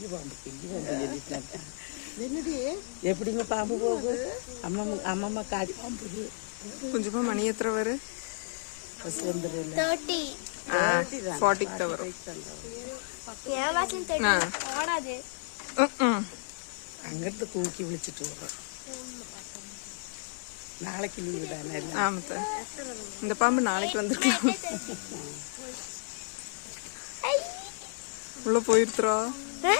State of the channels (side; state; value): right; silent; digital silence